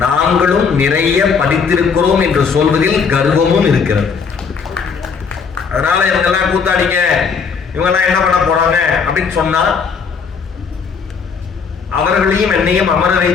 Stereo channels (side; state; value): right; quieter; 5.7 dB